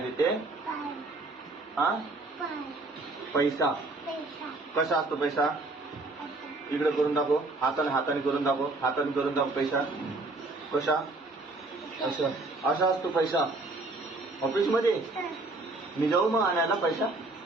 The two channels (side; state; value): left; quieter; 3.1 dB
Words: देते? हा पैसा. कसा असतो पैसा? इकडे करून दाखव. हाताने हाताने करून दाखव. हाताने करून दाखव. पैसा कसा? असं असा असतो पैसा ऑफिस मध्ये. मी जाऊ मग आणायला पैसा?